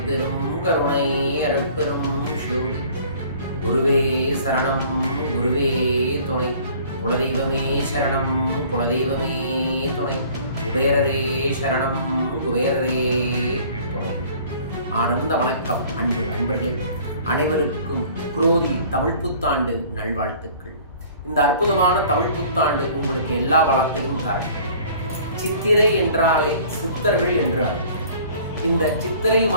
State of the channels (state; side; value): inverted; both; correlation -0.51